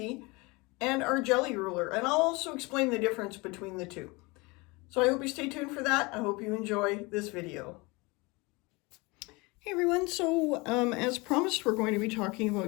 and our jelly ruler. And I'll also explain the difference between the two. So I hope you stay tuned for that. I hope you enjoy this video. Hey everyone, so as promised, we're going to be talking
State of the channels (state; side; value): quieter; right; 25.6 dB